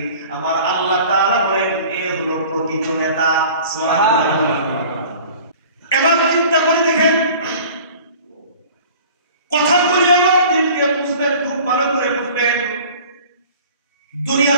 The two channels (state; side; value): inverted; both; correlation -0.45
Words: আমার আল্লাহ তাআলা বলেন এ হলো প্রকৃত নেতা। সুবহানাল্লাহ। এবার চিন্তা করে দেখেন, কথা বলি আমার দিনকে বুঝবেন, খুব ভালো করে বুঝবেন।